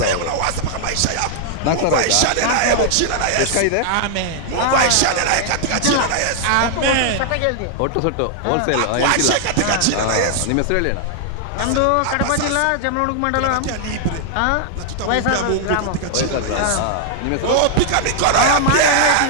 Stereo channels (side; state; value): both; different; correlation -0.01